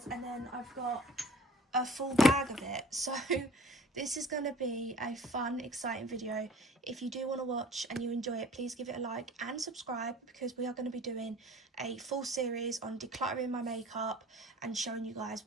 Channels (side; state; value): both; normal; correlation 0.48